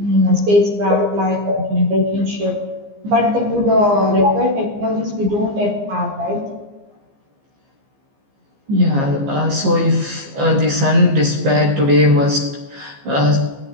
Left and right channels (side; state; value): left; late; 15 ms